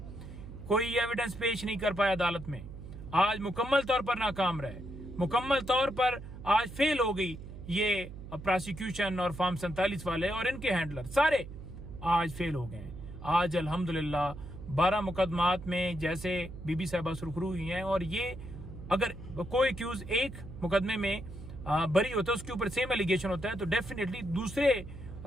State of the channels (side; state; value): right; noise; hum, 12 dB below the sound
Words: कोई एविडेंस पेश नहीं कर पाया अदालत में। आज मुकम्मल तौर पर नाकाम रहे, मुकम्मल तौर पर आज फेल हो गई ये प्रोसिक्यूशन और फॉर्म 47 वाले और इनके हैंडलर सारे आज फेल हो गए। आज अल्हम्दुलिल्लाह 12 मुकदमात में जैसे बीबी साहिबा सुरखरू हुई हैं और ये अगर कोई एक्यूज एक मुकदमे में बरी होता है, उसके ऊपर सेम एलिगेशन होता है, तो डेफिनेटली दूसरे